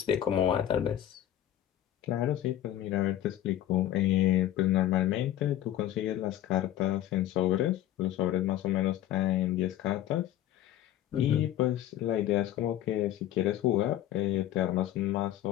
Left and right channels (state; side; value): quieter; right; 12.6 dB